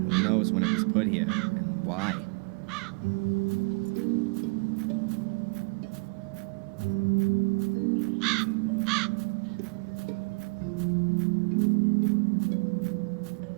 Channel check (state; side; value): quieter; left; 31.2 dB